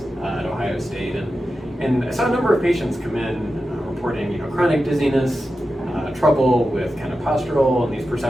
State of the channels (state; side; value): normal; both; correlation 0.91